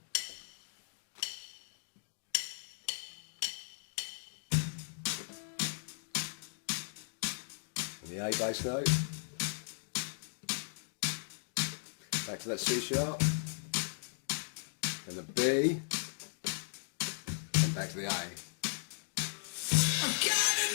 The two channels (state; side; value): silent; right; digital silence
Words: And the A bass note. Back to that C sharp. And the B. And back to the A.